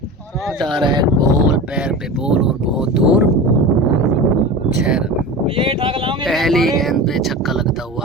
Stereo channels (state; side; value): normal; both; correlation 0.30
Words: डायरेक्ट बॉल, पैर पे बॉल और बहुत दूर 6 रन। पहली गेंद पे छक्का लगता